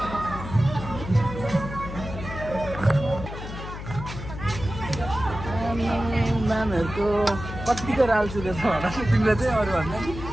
म्यामहरूको कतिको राल्छु रहेछ होला तिमीले चाहिँ अरू भन्दा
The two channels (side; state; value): left; noise; hum, 9 dB below the sound